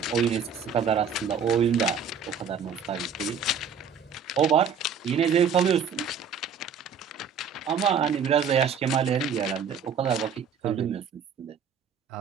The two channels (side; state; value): left; quieter; 6.3 dB